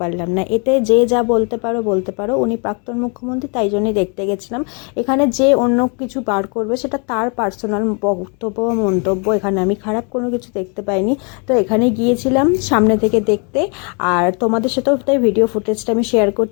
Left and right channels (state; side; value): quieter; right; 35.6 dB